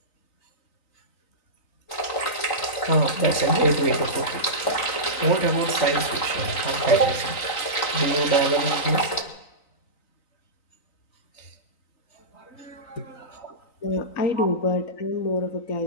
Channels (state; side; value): late; right; 3.9 ms